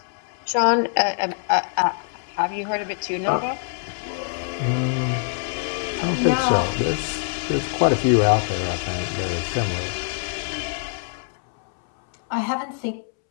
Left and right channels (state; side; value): silent; right; 63 dB below the other